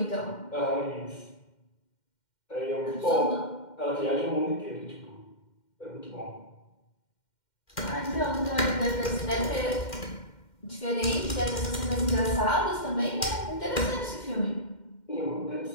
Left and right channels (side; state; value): right; late; 2.1 ms